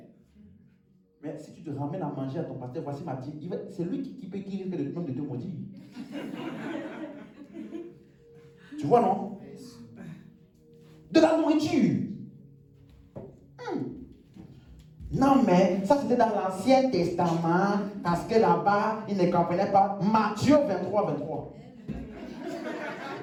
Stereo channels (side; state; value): both; identical; correlation 1.00